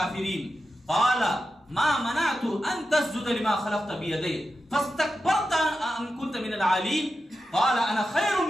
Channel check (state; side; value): normal; both; correlation 0.90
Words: قال ما منعت ان تسجد لما خلقت بيدي فاستكبرت ام كنت من العالين قال انا خير